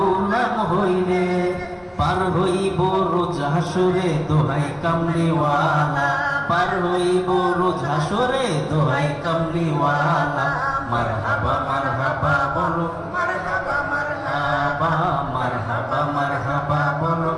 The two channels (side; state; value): both; identical; correlation 1.00